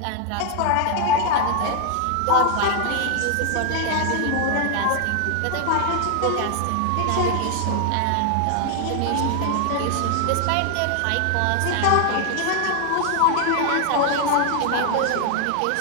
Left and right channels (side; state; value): both; different; correlation 0.00